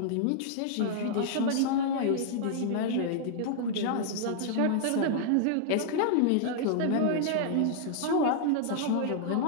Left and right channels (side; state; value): both; different; correlation -0.01